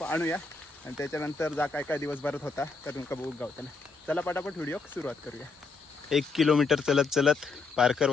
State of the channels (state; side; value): quieter; right; 4.2 dB